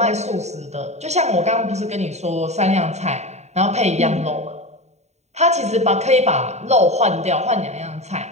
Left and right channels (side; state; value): left; late; 0.32 ms